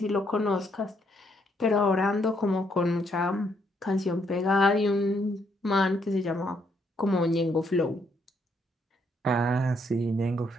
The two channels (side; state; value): both; normal; correlation 0.73